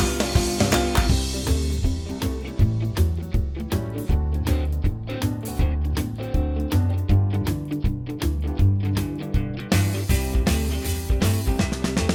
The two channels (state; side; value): identical; both; correlation 1.00